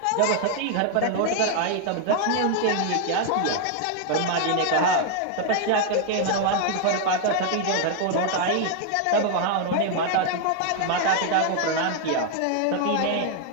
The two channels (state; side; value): different; both; correlation 0.00